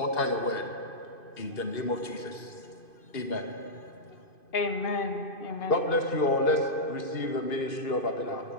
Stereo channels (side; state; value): right; late; 2.5 ms